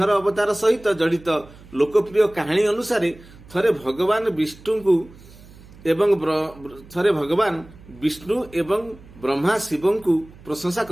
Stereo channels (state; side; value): noise; right; hum, 21 dB below the sound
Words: अवतार सहित जड़ित लोकप्रिय कहानी अनुसार थरे भगवान विष्णु एवं ब्रह्मा शिव को प्रशंसा